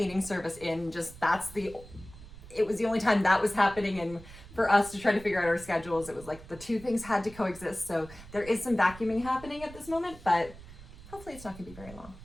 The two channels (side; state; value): right; noise; rumble, 17 dB below the sound